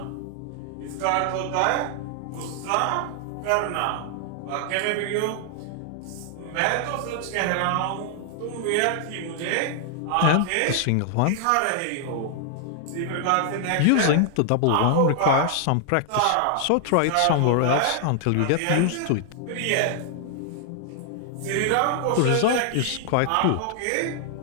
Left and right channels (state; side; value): different; both; correlation 0.00